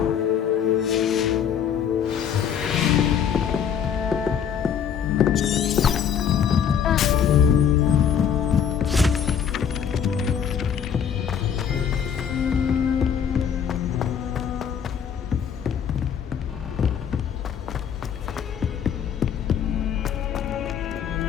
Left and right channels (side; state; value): right; quieter; 8.0 dB